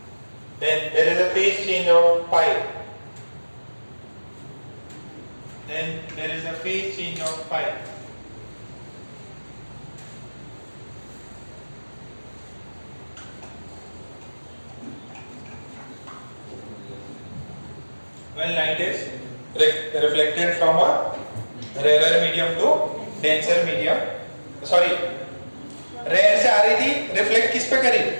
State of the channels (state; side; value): inverted; both; correlation -1.00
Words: there is a phase change of pi. Then there is a phase change of pi. When light is reflected from a rarer medium to denser medium, sorry, rarer से आ रही थी, reflect किस पे करी?